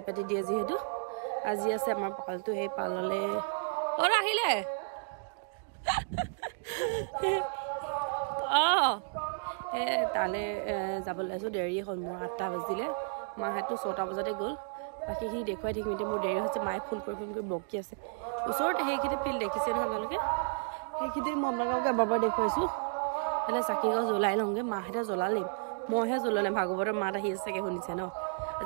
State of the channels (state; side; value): silent; left; digital silence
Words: পাতি দিয়ে যিহেতু আজি আছে আমাৰ পালটো সেই পাললৈ আহিলে তালৈ যাবলৈ আছোঁ দেৰি হ'ল মোৰ 8টা বাজিলে মাহঁতো 6টা বজাতে গ'ল বাকীখিনি দেখুৱাই থাকিম মোৰ দেৰি হৈছে মায়ে ফোন কৰি বকি আছে ওচৰতে সেইখিনি ফিল্ড দেখিছে নহয় আপোনালোকে সেইখিনি মই আপোনালোকক এবাৰ দেখুৱাইছোঁ এনে চাকি গছ জ্বলাই লওঁগৈ মাহঁতে জ্বলালেই মইহে জ্বলোৱা নাই ভাগৱতৰ মাত আহি আছে চাগে শুনিছে ন